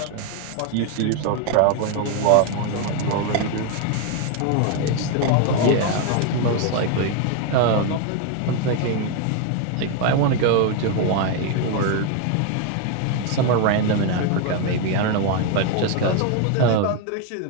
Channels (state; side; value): different; both; correlation 0.01